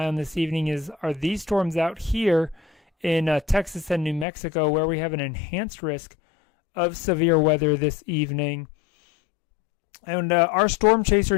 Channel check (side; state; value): right; drops out; at 4.2 s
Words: on this evening are these storms out here in Texas and New Mexico, where we have an enhanced risk of severe weather this evening. And our storm chaser,